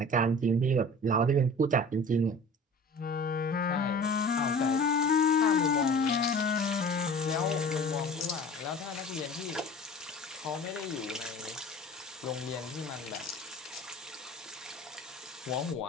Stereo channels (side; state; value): both; normal; correlation 0.42